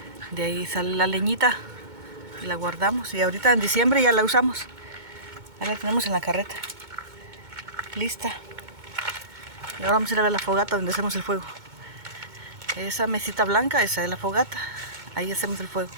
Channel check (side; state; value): left; late; 2.2 ms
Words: De ahí sale la leñita y la guardamos. Y ahorita en diciembre ya la usamos. Ya la tenemos en la carreta. Lista. Y ahora vamos a ir a ver la fogata donde hacemos el fuego. Esa mesita blanca, esa es la fogata. Ahí hacemos el fuego.